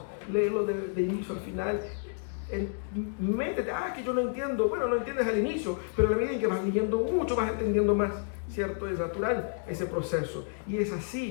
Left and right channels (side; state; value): right; silent; digital silence